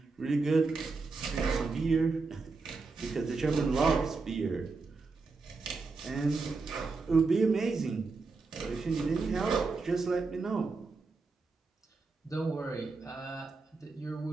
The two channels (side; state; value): left; quieter; 4.1 dB